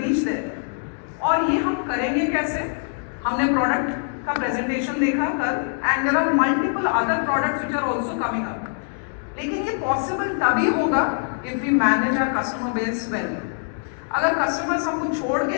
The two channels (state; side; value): silent; right; 63 dB below the other